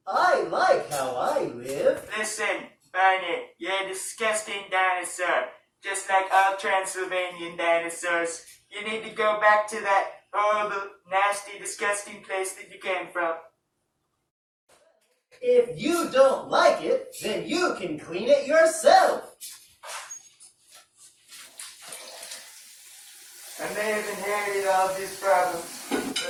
I like how I live. Listen, Barney, you're a disgusting dinosaur. Just like all Transylvanian dinosaurs. You need to go back to that horrible, nasty, disgusting place that you came from. If you don't like it, then you can clean it yourself. I may have inherited all of these problems, but I'm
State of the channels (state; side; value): identical; both; correlation 1.00